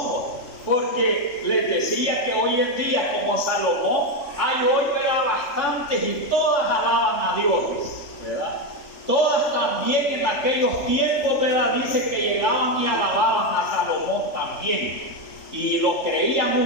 Porque les decía que hoy en día, como Salomón, hay hoy, ¿verdad?, bastantes y todas alaban a Dios, ¿verdad? Todas también en aquellos tiempos, ¿verdad?, dice que llegaban y alababan a Salomón también. Y lo creían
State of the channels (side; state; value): right; late; 3.4 ms